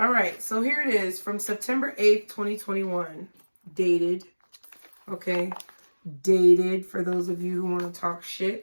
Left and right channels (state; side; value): inverted; both; correlation -1.00